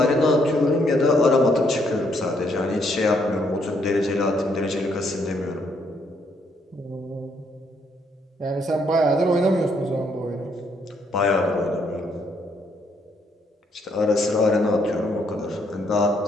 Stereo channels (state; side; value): normal; both; correlation 0.71